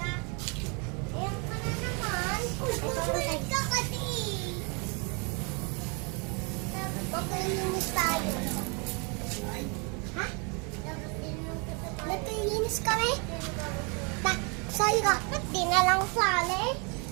Makinis tayo. Ha? Nakinis kami? Sorry ka, di na lang sali.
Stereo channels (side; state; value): left; quieter; 33.4 dB